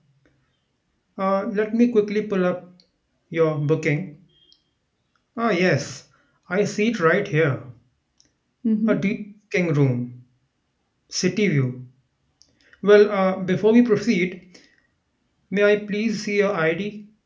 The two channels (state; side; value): identical; both; correlation 1.00